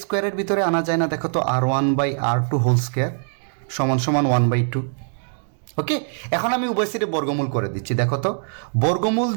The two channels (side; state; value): left; silent; digital silence